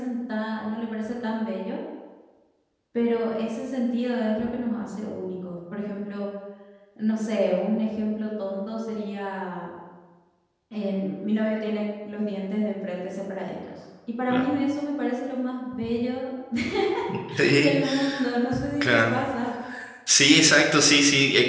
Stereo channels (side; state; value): both; identical; correlation 1.00